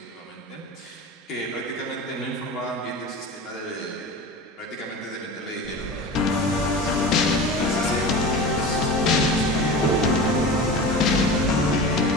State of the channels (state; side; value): normal; both; correlation 0.31